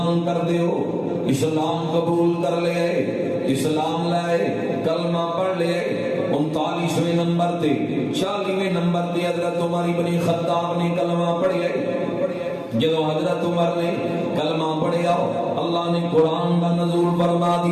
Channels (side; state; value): both; identical; correlation 1.00